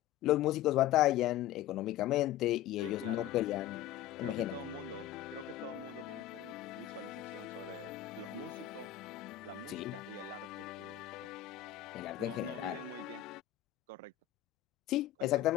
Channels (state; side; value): quieter; right; 12.8 dB